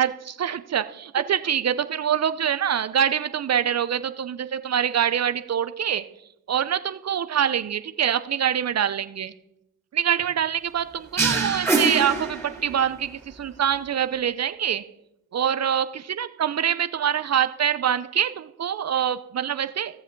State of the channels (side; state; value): left; quieter; 8.0 dB